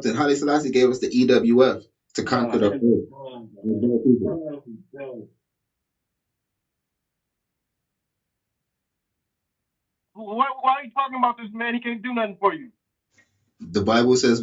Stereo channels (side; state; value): both; identical; correlation 1.00